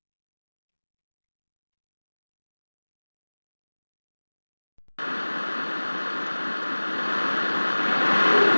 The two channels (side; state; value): both; inverted; correlation -1.00